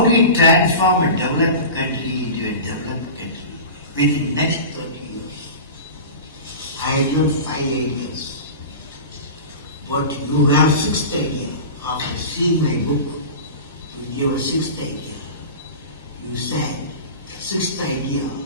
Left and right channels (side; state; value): both; inverted; correlation -0.32